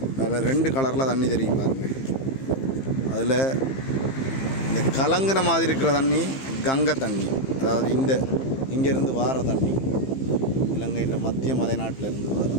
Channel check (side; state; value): right; late; 15 ms